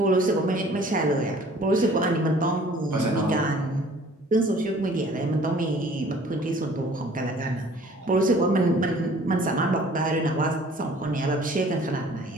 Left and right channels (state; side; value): normal; both; correlation 0.52